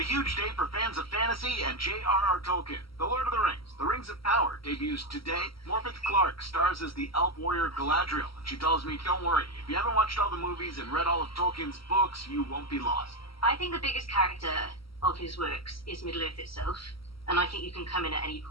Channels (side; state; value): right; late; 0.75 ms